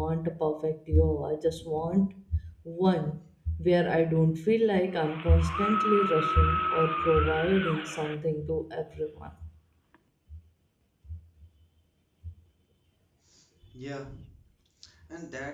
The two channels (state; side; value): identical; both; correlation 1.00